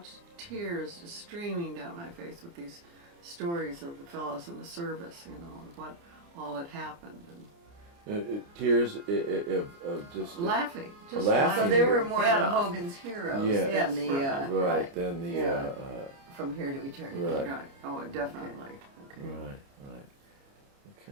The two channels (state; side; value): late; left; 29 ms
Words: tears just streaming down my face with these stories of the fellows in the service, you know, and what all had happened. And tears of just laughing, just laughing. laughing. So they were more Yeah. the Hogan's Heroes Yeah. than the right. Than the From Here to Eternity. right. Oh, definitely. Okay. Right.